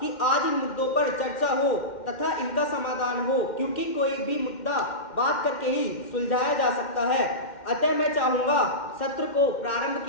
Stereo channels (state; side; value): late; right; 2.1 ms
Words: आज इन मुद्दों पर चर्चा हो तथा इनका समाधान हो, क्योंकि कोई भी मुद्दा बात करके ही सुलझाया जा सकता है। अतः मैं चाहूँगा सत्र को प्रारंभ